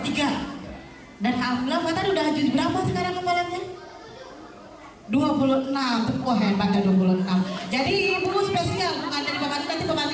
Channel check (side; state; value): both; identical; correlation 1.00